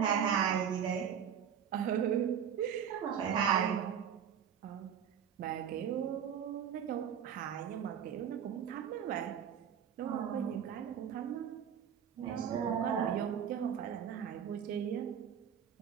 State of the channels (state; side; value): quieter; left; 8.4 dB